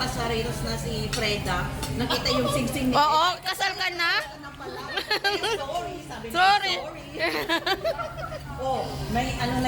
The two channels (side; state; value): both; identical; correlation 1.00